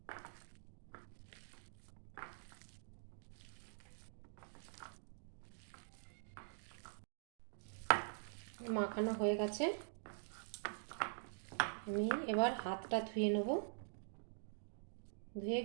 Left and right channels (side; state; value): left; silent; digital silence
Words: মাখানো হয়ে গেছে। আমি এবার হাতটা ধুয়ে নেব। ধুয়ে